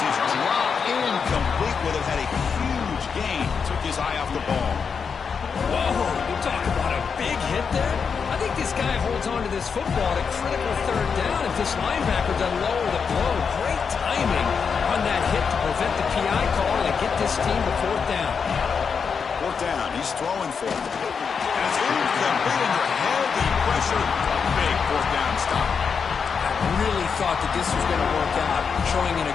is dropped incomplete. Would have had a huge gain. Took his eye off the ball. Whoa, you talk about a big hit there. I think this guy holds on to this football at a critical third down if this linebacker doesn't lower the blow. Great timing on that hit to prevent the PI call and get this team to fourth down. Fourth down, he's throwing for it. And it's incomplete under heavy pressure. Big fourth down stop. Really thought that this was going to work out, showing an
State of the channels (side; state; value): right; quieter; 6.0 dB